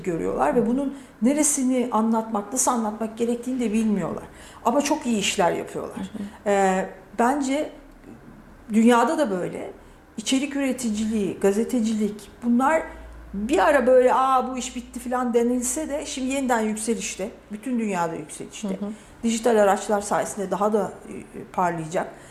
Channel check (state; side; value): identical; both; correlation 1.00